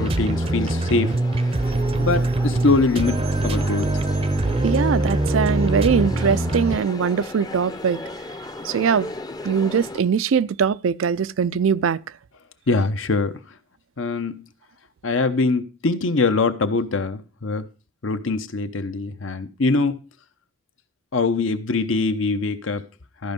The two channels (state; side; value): normal; both; correlation 0.35